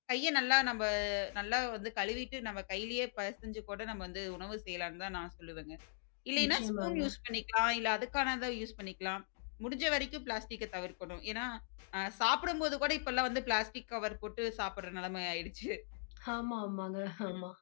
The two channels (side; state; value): right; silent; digital silence